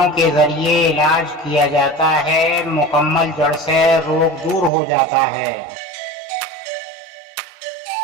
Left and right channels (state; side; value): drops out; left; at 4.7 s